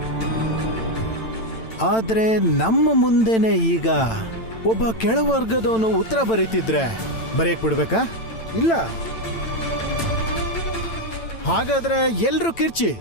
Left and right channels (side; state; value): right; late; 9.0 ms